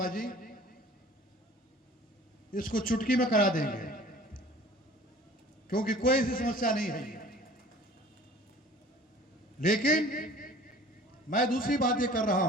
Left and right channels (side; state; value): both; normal; correlation 0.47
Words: जी इसको चुटकी में करा देंगे, क्योंकि कोई ऐसी समस्या नहीं है। लेकिन मैं दूसरी बात ये कर रहा